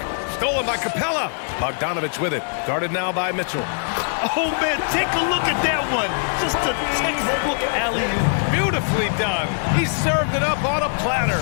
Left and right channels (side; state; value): right; silent; digital silence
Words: Stolen by Capella. Bogdanovich with it. Guarded now by Mitchell. Oh, man, take a look at that one. Just a textbook alley-oop. Beautifully done. He served it up on a platter.